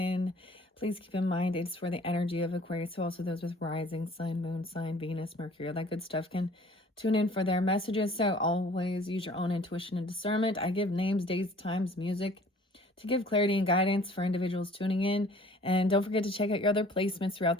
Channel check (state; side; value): normal; both; correlation 0.52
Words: Please keep in mind it's for the energy of Aquarius, so also those with rising sign, moon sign, Venus, Mercury, all that good stuff can tune in for their messages. So always use your own intuition and discernment. I give names, dates, times, music to give clarity and guidance for individuals tuning in. And don't forget to check out your other placements throughout